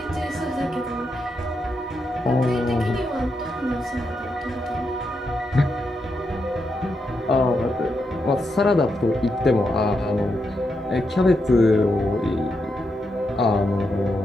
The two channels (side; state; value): both; normal; correlation 0.83